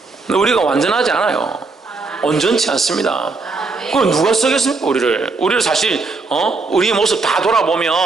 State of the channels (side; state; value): left; quieter; 3.9 dB